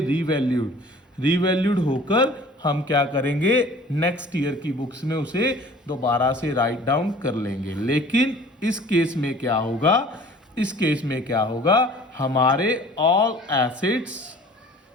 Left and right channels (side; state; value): both; normal; correlation 0.48